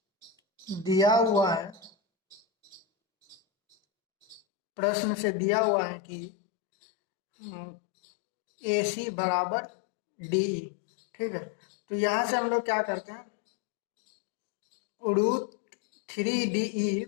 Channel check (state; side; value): drops out; right; at 4.4 s